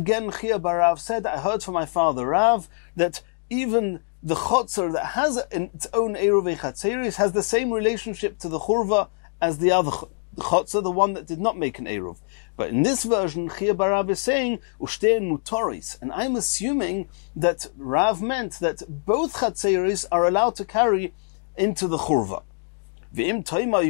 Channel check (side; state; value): right; silent; 63 dB below the other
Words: Chia bar Rav said, I heard from my father Rav that even the chotzer that has its own eruv chatzeris has the same relationship to the churva as the other chotzer, the one that did not make an eruv. But in this version, Chia bar Rav is saying ushtein mutoris, and I'm assuming that Rav meant that both chatzeris are allowed to carry into the churva. Ve'im taima, you're